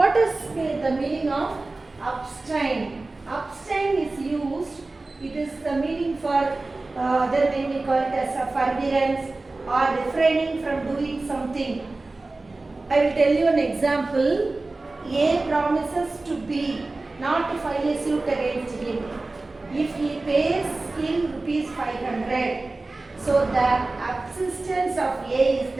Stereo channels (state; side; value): quieter; left; 3.2 dB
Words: is the meaning of abstain? Abstain is used, it is the meaning for other name we call it as a forbearance or refraining from doing something. I will tell you an example. A promises to B not to file a suit against him if he pays him rupees 500. So the subsistence of A is